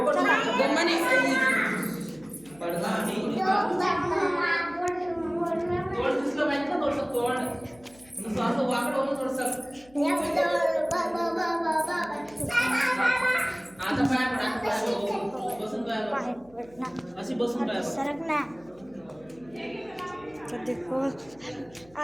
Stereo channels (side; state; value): left; noise; hum, 27 dB below the sound